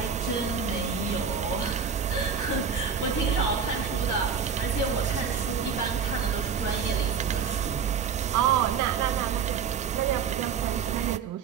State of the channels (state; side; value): quieter; left; 6.4 dB